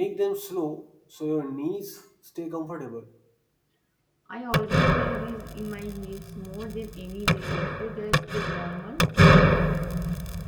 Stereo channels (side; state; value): both; identical; correlation 1.00